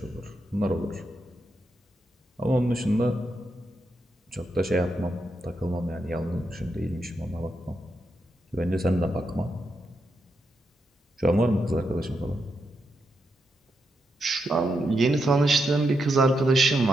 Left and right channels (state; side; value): normal; both; correlation 0.83